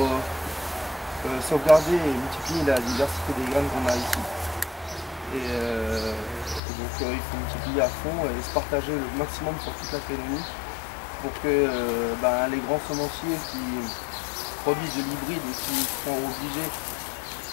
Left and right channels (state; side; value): drops out; right; at 6.6 s